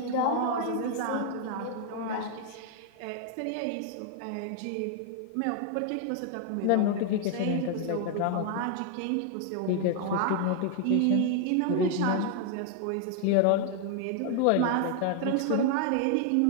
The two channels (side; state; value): both; different; correlation 0.00